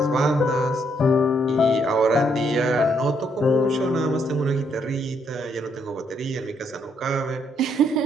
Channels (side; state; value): both; normal; correlation 0.73